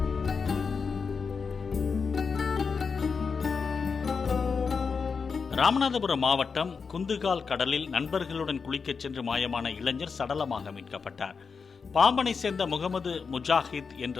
ராமநாதபுரம் மாவட்டம் குந்துகால் கடலில் நண்பர்களுடன் குளிக்கச் சென்று மாயமான இளைஞர் சடலமாக மீட்கப்பட்டார். பாம்பனை சேர்ந்த முகமது முஜாஹித் என்ற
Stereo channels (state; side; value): quieter; right; 5.4 dB